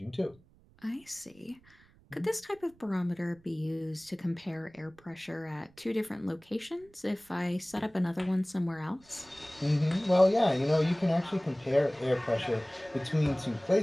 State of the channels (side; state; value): right; noise; rumble, 29 dB below the sound